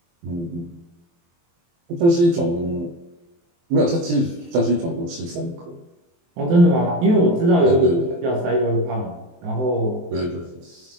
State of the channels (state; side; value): late; left; 23 ms